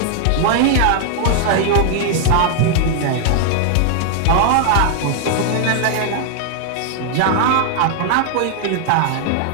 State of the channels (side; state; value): both; different; correlation 0.00